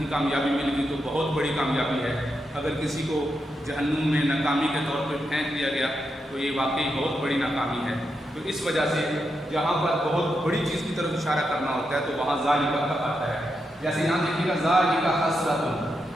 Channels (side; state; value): both; normal; correlation 0.85